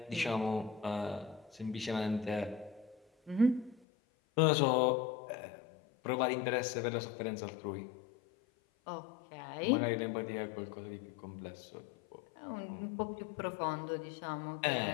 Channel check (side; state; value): right; drops out; at 3.8 s